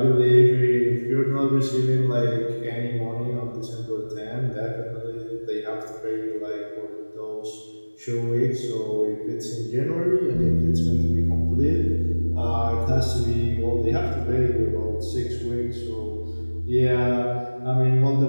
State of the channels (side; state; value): both; inverted; correlation -1.00